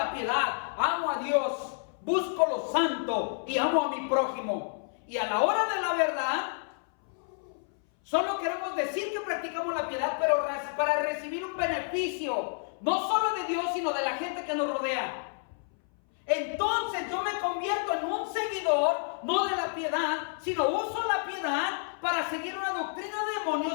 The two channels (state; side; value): silent; right; 58 dB below the other